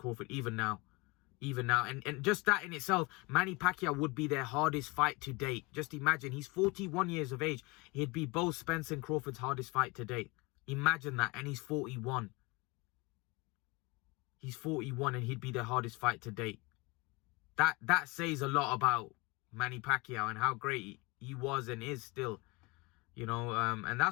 even now. And just that in itself, Manny Pacquiao would be their hardest fight to date. Just imagine, he's 41 years of age. He'd be both Spencer and Crawford's hardest fight to date. Imagine that. And he's 41. He's 41 and he'd be their hardest fight to date. That says a lot about Manny Pacquiao and how great he was and is still. You know, and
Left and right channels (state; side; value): quieter; right; 25.9 dB